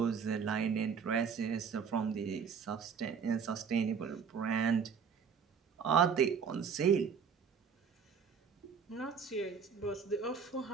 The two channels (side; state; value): left; quieter; 6.4 dB